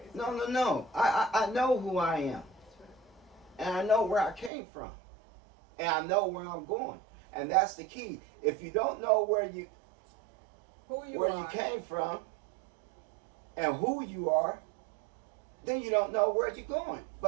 No. I know who I am. And I know where I came from. And I know where I'm going. And that's the key. If you don't know where you came from and who you are, then you don't know where you're going.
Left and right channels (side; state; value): left; drops out; at 4.5 s